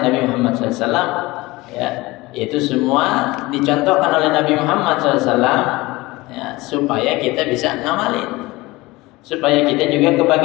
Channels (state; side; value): quieter; right; 21.0 dB